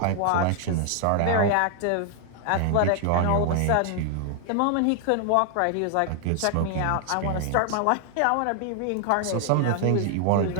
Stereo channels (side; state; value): both; different; correlation 0.00